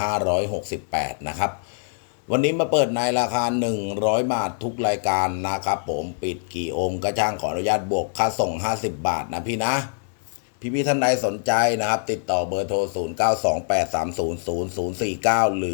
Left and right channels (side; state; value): right; silent; digital silence